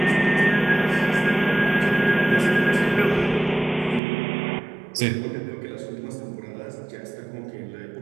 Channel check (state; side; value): drops out; left; at 4.0 s